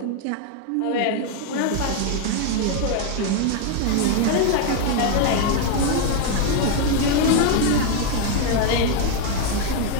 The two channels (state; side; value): different; both; correlation 0.01